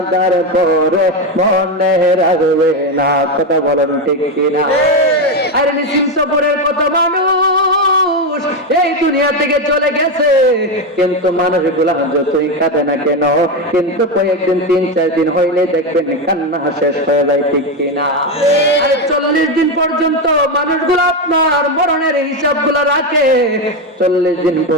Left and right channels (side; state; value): both; normal; correlation 0.11